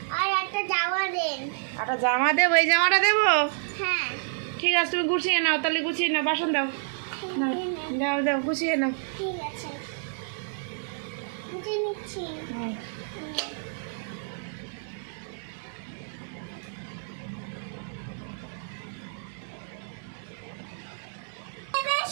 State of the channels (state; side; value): silent; left; digital silence